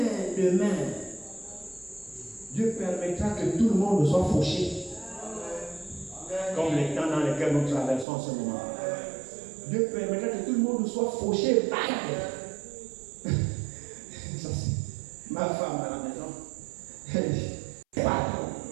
demain, Dieu permettra que tout le monde soit fauché. Comme les temps dans lesquels nous traversons en ce moment. Dieu permettra que tout le monde soit fauché. Ça, c'est ma femme à la maison. Elle dit, pardon.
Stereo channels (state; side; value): drops out; left; at 8.1 s